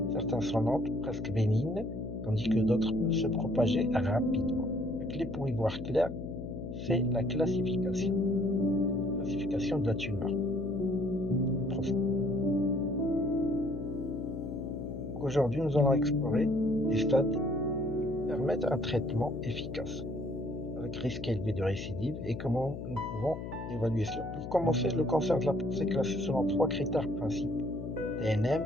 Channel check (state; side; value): noise; left; hum, 8 dB below the sound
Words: Certains sont lentes, presque bénignes, tandis que d'autres peuvent se propager rapidement. La clé pour y voir clair, c'est la classification. Classification de la tumeur. Aujourd'hui, nous allons explorer les stades qui permettent un traitement efficace, avec risque élevé de récidive, et comment nous pouvons évaluer cela. Pour commencer, le cancer de la prostate est classé selon 3 critères principaux: TNM,